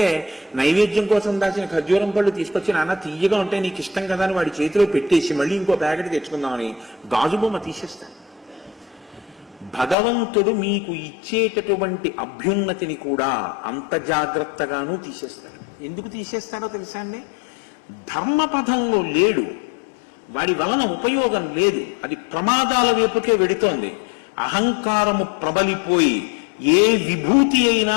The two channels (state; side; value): drops out; right; at 10.0 s